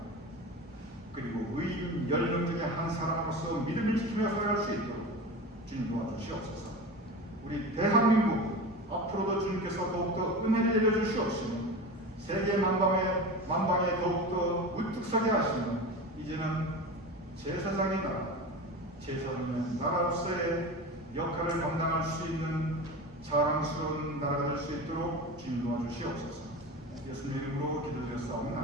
그리고 의인 10명 중에 한 사람으로서 믿음을 지키며 살아갈 수 있도록 주님 도와주시옵소서. 우리 대한민국 앞으로도 주님께서 더욱더 은혜를 내려주시옵시며 세계 만방에 더욱더 우뚝 서게 하시며 이제는 제사장의 나라로서의 역할을 감당할 수 있는 자랑스러운 나라가 될 수 있도록 주님 도와주시옵소서. 예수님 이름으로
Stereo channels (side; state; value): both; normal; correlation 0.29